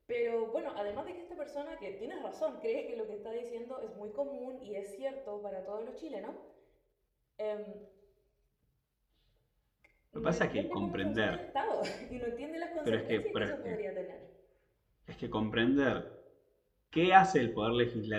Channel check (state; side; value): identical; both; correlation 1.00